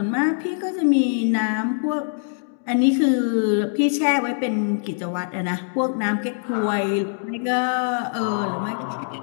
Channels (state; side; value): silent; right; digital silence